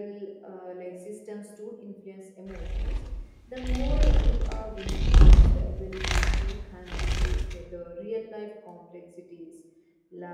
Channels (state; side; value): identical; both; correlation 1.00